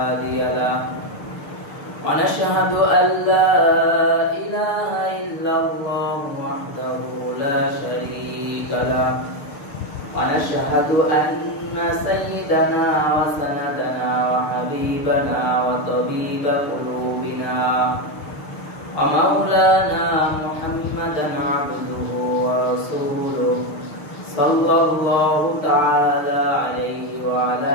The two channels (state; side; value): late; right; 6.7 ms